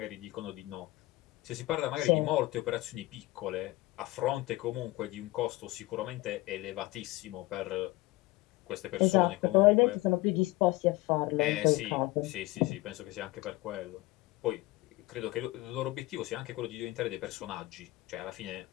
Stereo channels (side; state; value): right; quieter; 19.7 dB